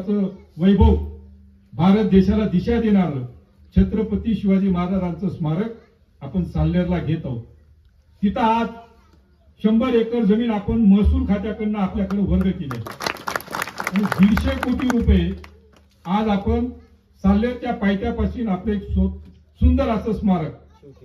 वैभव, भारत देशाला दिशा देणारं छत्रपती शिवाजी महाराजांचं स्मारक आपण साल्हेरला घेत आहोत. तिथं आज 100 एकर जमीन आपण महसूल खात्याकडनं आपल्याकडे वर्ग केली आणि 150 कोटी रुपये आज आपण साल्हेरच्या पायथ्यापासून आपलं एक सुंदर असं स्मारक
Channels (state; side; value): identical; both; correlation 1.00